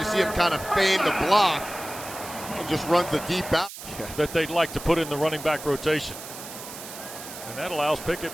see him kind of feign the block and just runs the deep out. That they'd like to put in the running back rotation. And that allows Pickett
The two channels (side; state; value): right; noise; hiss, 12 dB below the sound